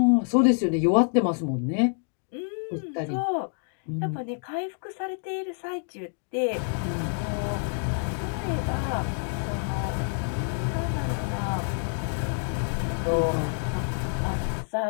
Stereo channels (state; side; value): silent; right; 56 dB below the other